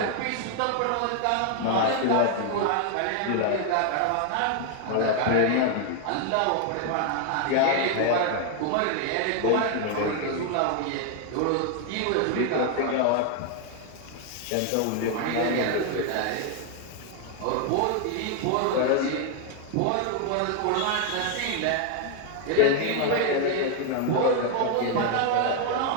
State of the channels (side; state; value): both; different; correlation 0.00